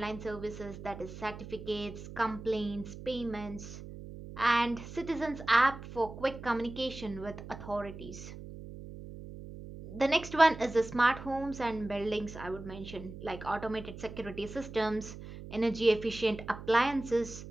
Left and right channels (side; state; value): right; noise; hum, 12 dB below the sound